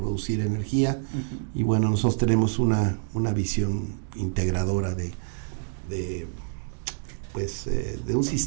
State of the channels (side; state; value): left; silent; digital silence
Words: energía. Y bueno, nosotros tenemos una visión integradora de un